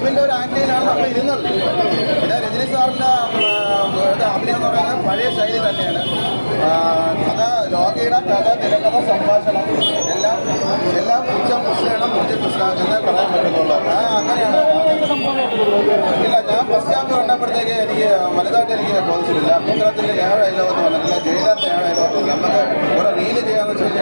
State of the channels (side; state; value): both; inverted; correlation -1.00